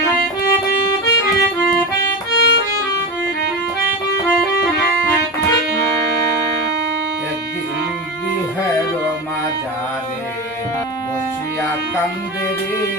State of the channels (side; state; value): both; normal; correlation 0.21